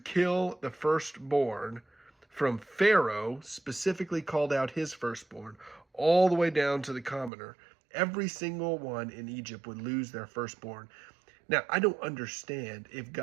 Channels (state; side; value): drops out; left; at 7.3 s